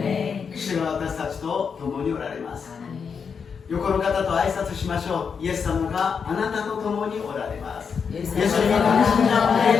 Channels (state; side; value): quieter; right; 6.2 dB